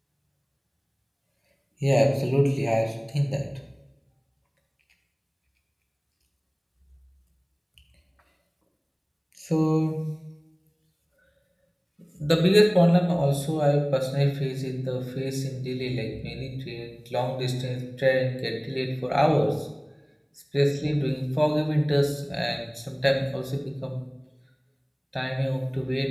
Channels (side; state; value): both; identical; correlation 1.00